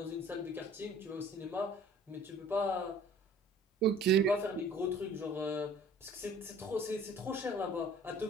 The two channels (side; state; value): both; normal; correlation 0.51